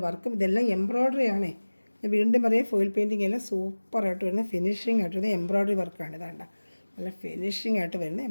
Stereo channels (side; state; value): both; inverted; correlation -1.00